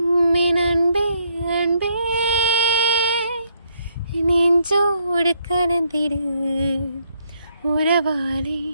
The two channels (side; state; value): both; inverted; correlation -0.72